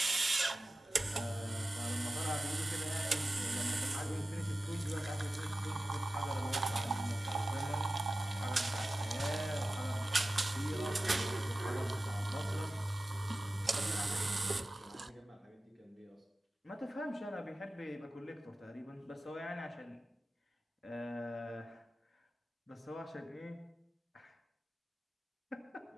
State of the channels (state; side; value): normal; both; correlation 0.95